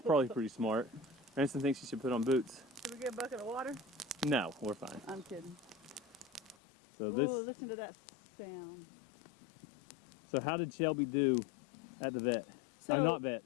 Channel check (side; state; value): right; drops out; at 6.6 s